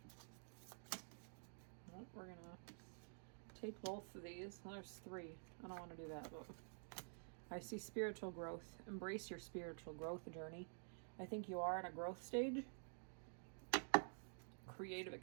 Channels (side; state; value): left; silent; digital silence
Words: Well, we're going to take both of these. Well, there's 3. I don't want to do that, but I see spiritual growth. Embrace your spiritual growth journey. I think you are in a growth stage. Creative